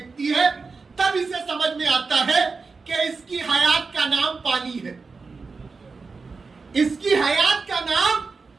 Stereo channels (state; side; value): quieter; left; 4.5 dB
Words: ہے تب اسے سمجھ میں آتا ہے کہ اس کی حیات کا نام پانی ہے, اس کی حیات کا نام